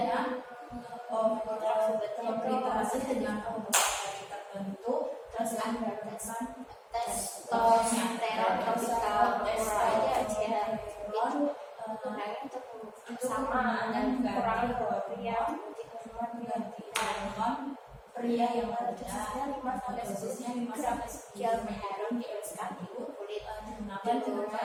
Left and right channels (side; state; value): both; identical; correlation 1.00